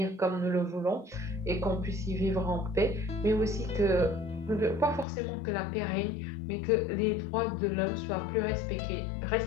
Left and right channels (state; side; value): drops out; right; at 5.1 s